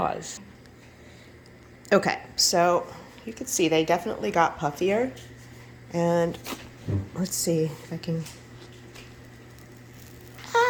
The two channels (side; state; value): both; identical; correlation 1.00